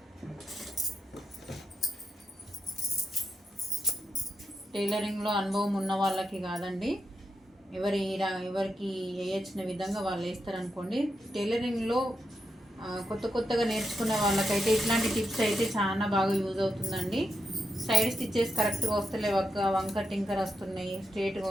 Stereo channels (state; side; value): normal; both; correlation 0.85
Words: టైలరింగ్లో అనుభవం ఉన్న వాళ్ళకి కాదండి, ఎవరికి వేయచ్చిన విధంగా వాళ్ళు వేస్తారనుకోండి. టైలరింగ్లో కొత్తగా నేర్చుకునే వాళ్ళకైతే ఇట్లాంటి టిప్స్ అయితే చాలా బాగా యూజ్ అవుతుందండి. సైడ్ స్టిచ్చెస్ కరెక్ట్గా వస్తలేవు అక్క, వంక టింకర్ వస్తున్నాయి, స్ట్రేట్గా